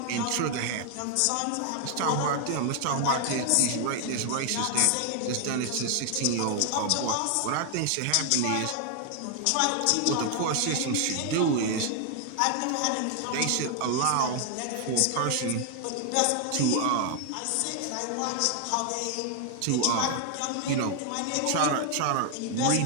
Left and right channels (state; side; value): different; both; correlation 0.00